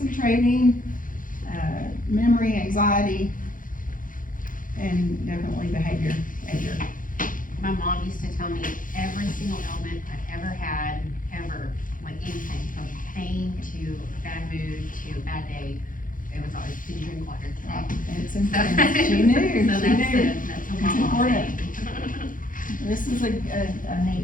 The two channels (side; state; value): right; late; 0.39 ms